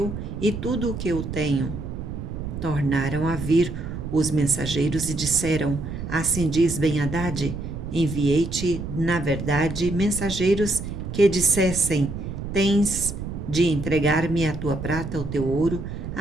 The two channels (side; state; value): right; noise; rumble, 7 dB below the sound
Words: e tudo o que eu tenho. Tornaram a vir os mensageiros e disseram: Assim diz Ben-Hadad: Enviei-te, na verdade, mensageiros que dissessem: Tens de entregar-me a tua prata, o teu ouro,